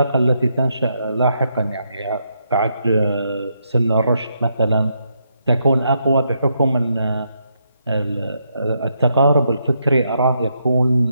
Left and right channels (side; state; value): both; inverted; correlation -0.79